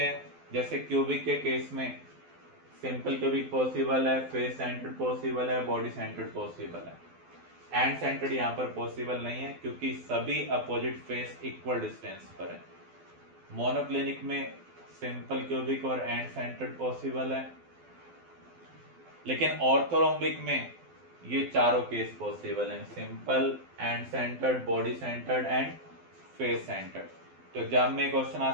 जैसे क्यूबिक के केस में सिंपल क्यूबिक पॉसिबल है, फेस सेंटर्ड पॉसिबल है, बॉडी सेंटर्ड पॉसिबल है। एंड सेंटर्ड यहां पर पॉसिबल नहीं है क्योंकि सभी अपोजिट फेस इक्वल डिस्टेंस पर है। मोनोक्लिनिक में सिंपल क्यूबिक और एंड सेंटर्ड पॉसिबल है, लेकिन ऑर्थोरोम्बिक में ये चारों केस पॉसिबल हैं, simple, and centred, body centred and face centred. तो एग्जाम में क्वेश्चन आ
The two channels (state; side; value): late; left; 12 ms